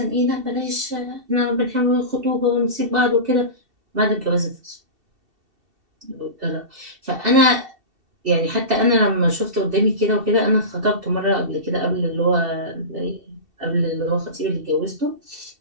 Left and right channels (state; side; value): late; left; 2.7 ms